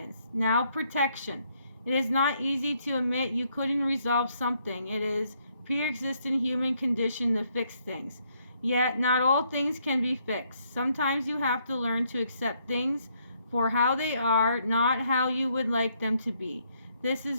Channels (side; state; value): both; inverted; correlation -0.72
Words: Now protection. It is not easy to admit you couldn't resolve something. It is pre-existing human condition to fix things. Yet, not all things can be fixed. Sometimes you have to learn to accept things for how they are, not how you would like them to be. This